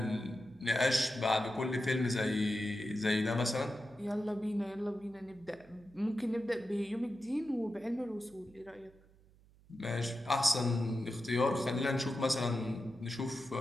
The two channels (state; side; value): noise; right; hum, 27 dB below the sound